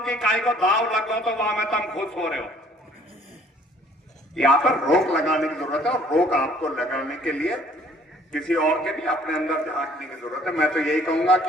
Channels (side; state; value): both; normal; correlation 0.58